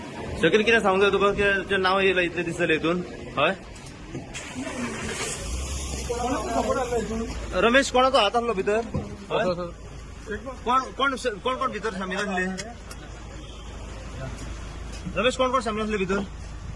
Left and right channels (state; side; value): identical; both; correlation 1.00